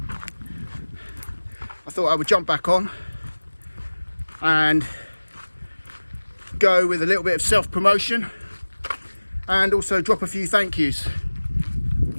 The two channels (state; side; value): inverted; both; correlation -1.00